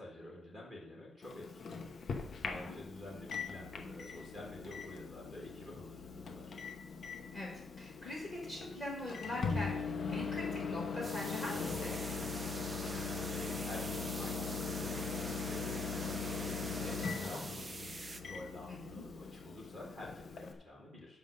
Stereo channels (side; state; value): right; quieter; 3.3 dB